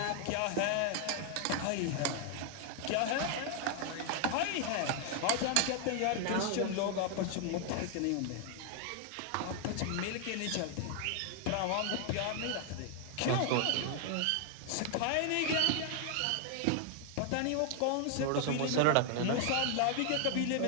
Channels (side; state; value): both; different; correlation 0.00